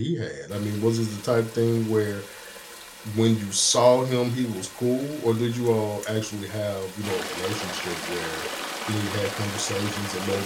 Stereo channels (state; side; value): identical; both; correlation 1.00